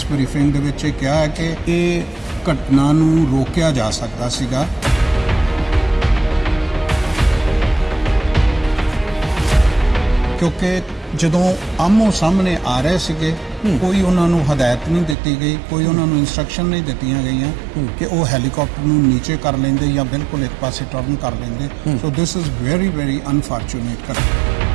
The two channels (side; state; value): left; drops out; at 15.2 s